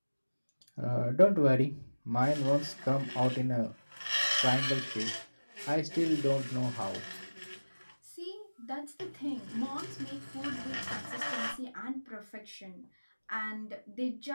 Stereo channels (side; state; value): both; inverted; correlation -1.00